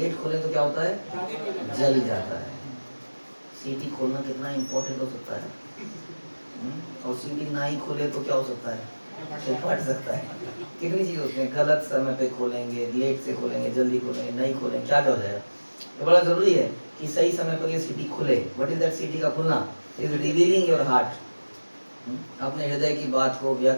खोले तो क्या होता है? जल जाता है। सीटी खोलना कितना इंपॉर्टेंट हो सकता है। और सीटी ना ही खोले तो क्या हो सकता है? तो फट सकता है। कितनी चीज होती है, गलत समय पे खोलेंगे, लेट से खोलेंगे, जल्दी खोलेंगे, नहीं खोलेंगे, क्या हो जाएगा? तो बड़ा जरूरी है कि सही समय पर ये सीटी खुले। What is that? सीटी का खुलना इज रिवीलिंग योर हार्ट, अपने हृदय की बात को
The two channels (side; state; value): both; inverted; correlation -1.00